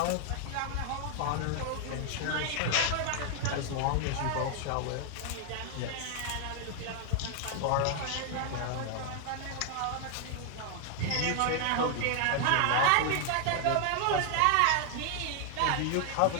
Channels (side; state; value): both; different; correlation 0.00